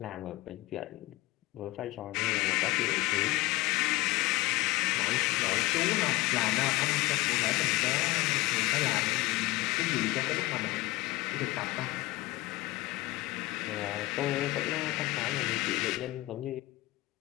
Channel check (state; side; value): quieter; right; 19.8 dB